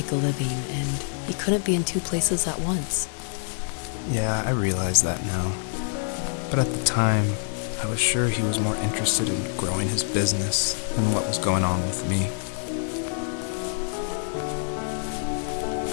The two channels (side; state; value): right; silent; digital silence